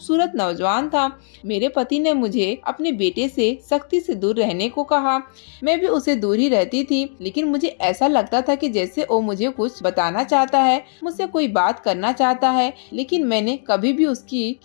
नौजवान था। मेरे पति ने मुझे अपने बेटे से सख्ती से दूर रहने को कहा। मैं भी उसे दूर ही रहती थी, लेकिन मुझे ऐसा लगता था कि जैसे वो मुझे कुछ बताना चाहता है, मुझसे कोई बात करना चाहता है, लेकिन मैंने कभी भी उसकी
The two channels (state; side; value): silent; right; digital silence